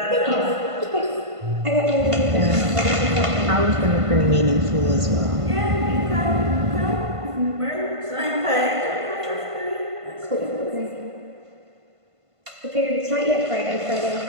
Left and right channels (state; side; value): late; left; 1.5 ms